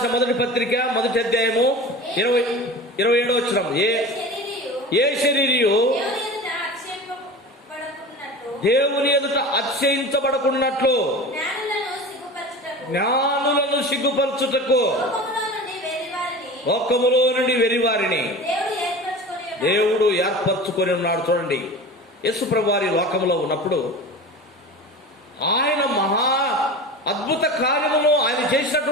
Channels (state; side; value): normal; both; correlation 0.34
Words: మొదటి పత్రిక 1వ అధ్యాయము 27వ వచనం. ఏ శరీరియు దేవుని ఎదుట అతిశయించబడకున్నట్లు జ్ఞానులను సిగ్గుపరచుటకు లోకములో నుండి వెరివారిని దేవుడు ఏర్పరచుకొని ఉన్నాడు. చూడండి, యేసుప్రభు వారి లోకములో ఉన్నప్పుడు ఆయన మహా అద్భుత కార్యమును, ఆయన